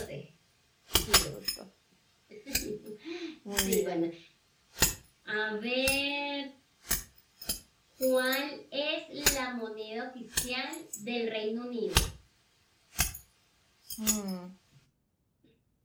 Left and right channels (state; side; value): identical; both; correlation 1.00